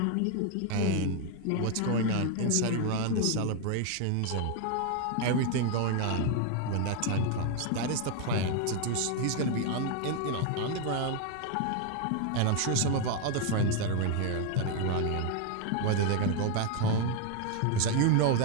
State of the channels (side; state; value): both; different; correlation 0.01